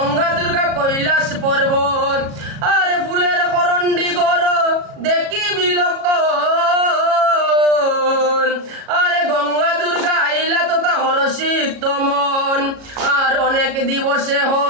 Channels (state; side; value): late; left; 37 ms